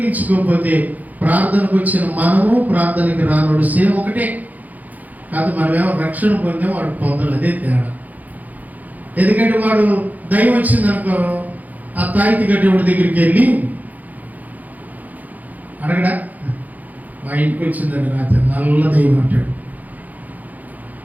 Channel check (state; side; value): late; left; 0.080 ms